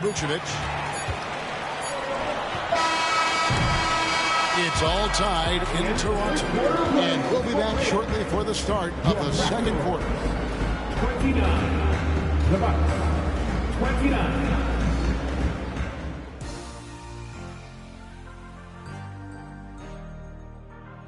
Vucevic. It's all tied in Toronto. And we'll be back shortly for the start of the second quarter. 29. The Bucks. 29.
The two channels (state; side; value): identical; both; correlation 1.00